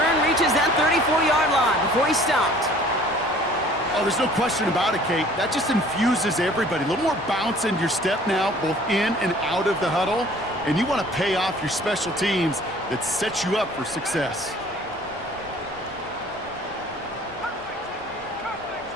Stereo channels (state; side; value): normal; both; correlation 0.52